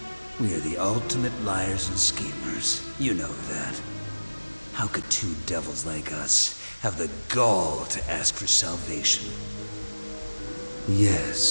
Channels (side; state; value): both; inverted; correlation -1.00